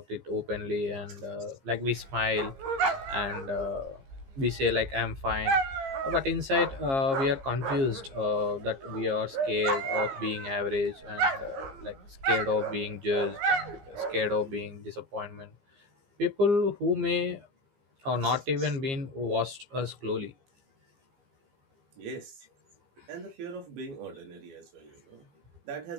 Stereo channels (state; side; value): late; left; 15 ms